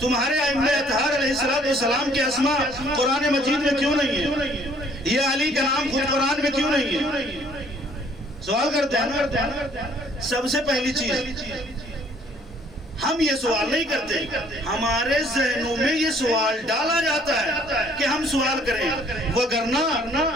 ائمہ اطہار علیہ السلام کے اسماء قرآن مجید میں کیوں نہیں ہے؟ یہ علی کا نام خود قرآن میں کیوں نہیں ہے؟ سوال کرتے ہیں نا. سب سے پہلی چیز، ہم یہ سوال نہیں کرتے، ہمارے ذہنوں میں یہ سوال ڈالا جاتا ہے کہ ہم سوال کریں. وگرنہ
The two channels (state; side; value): normal; both; correlation 0.60